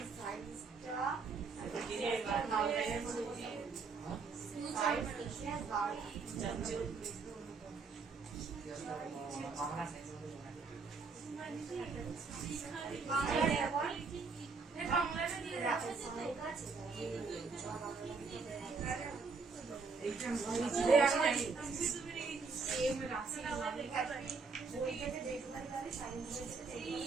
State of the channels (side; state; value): left; quieter; 4.7 dB